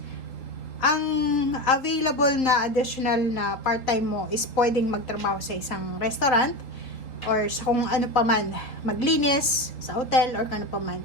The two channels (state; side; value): late; right; 3.8 ms